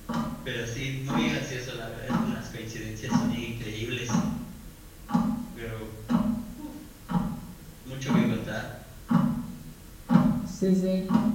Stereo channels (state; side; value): identical; both; correlation 1.00